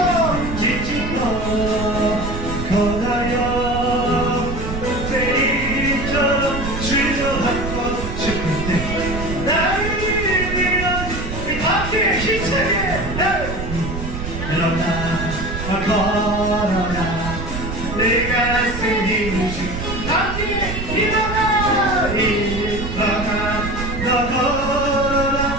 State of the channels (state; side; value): noise; right; rumble, 6 dB below the sound